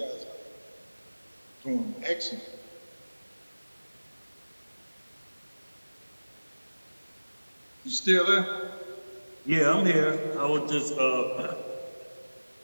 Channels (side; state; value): both; inverted; correlation -1.00